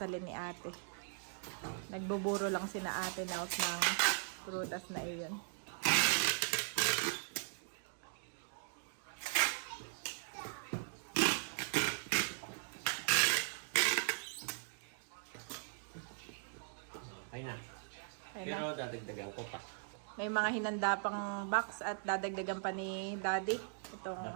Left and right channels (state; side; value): silent; left; digital silence